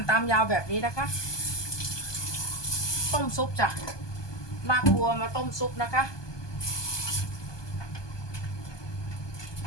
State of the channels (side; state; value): right; late; 1.2 ms